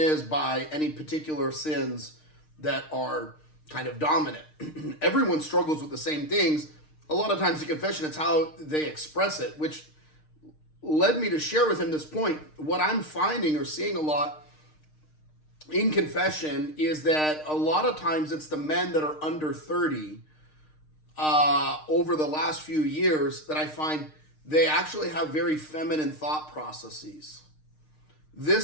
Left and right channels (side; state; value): right; late; 6.5 ms